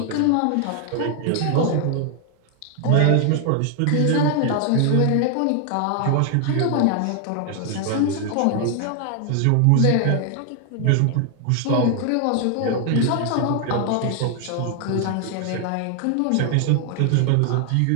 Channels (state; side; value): different; both; correlation 0.00